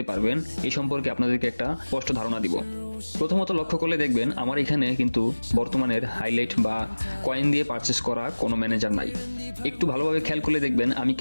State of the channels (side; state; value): both; inverted; correlation -1.00